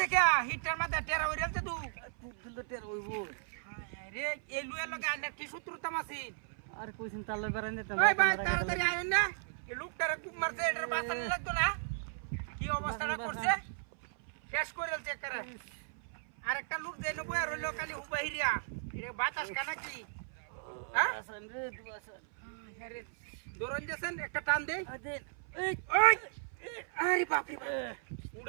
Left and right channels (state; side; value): silent; left; 54 dB below the other